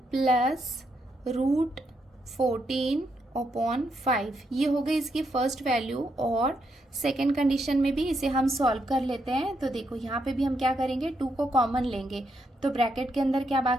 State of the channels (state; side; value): normal; both; correlation 0.79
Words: + √14 अपॉन 5, ये हो गई इसकी फर्स्ट वैल्यू। और सेकेंड कंडीशन में भी इसे हम सॉल्व कर लेते हैं। तो देखो यहाँ पे भी हम क्या करेंगे, 2 को कॉमन लेंगे, तो ब्रैकेट के अंदर क्या